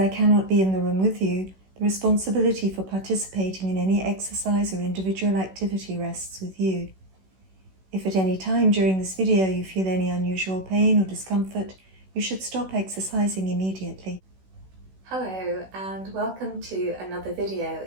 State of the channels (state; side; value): late; left; 16 ms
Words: cannot be in the room with you, the responsibility for participating in any exercise or individual activity rests with you. If at any time during this video you feel any unusual pain or discomfort, you should stop exercising immediately. Hello and welcome to another video